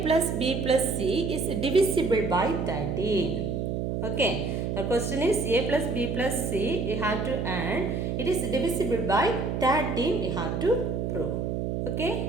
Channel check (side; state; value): right; noise; hum, 1 dB below the sound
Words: plus B plus C is divisible by 13, okay. The question is A plus B plus C we have to add, it is divisible by 13 we have to prove,